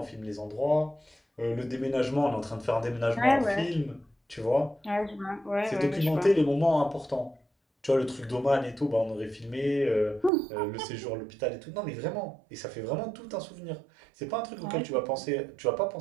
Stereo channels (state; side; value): drops out; left; at 10.3 s